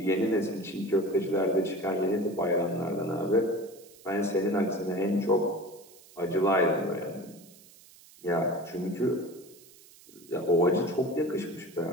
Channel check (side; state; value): right; noise; hiss, 23 dB below the sound